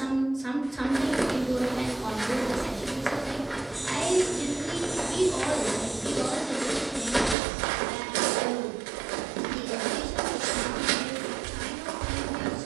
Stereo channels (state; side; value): drops out; left; at 7.4 s